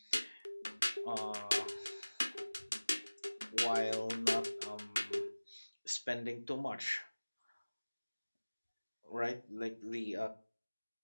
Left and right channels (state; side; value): inverted; both; correlation -1.00